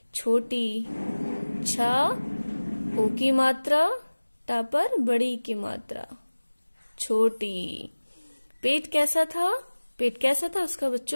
छोटी। छा ओ की मात्रा, टा पर बड़ी की मात्रा, छोटी। पेट कैसा था? पेट कैसा था उसका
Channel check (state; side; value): inverted; both; correlation -1.00